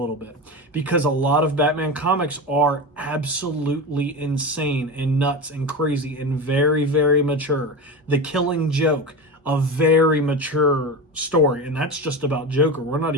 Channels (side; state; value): both; normal; correlation 0.23